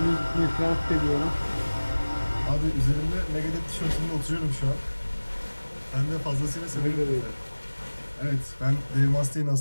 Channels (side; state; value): both; inverted; correlation -1.00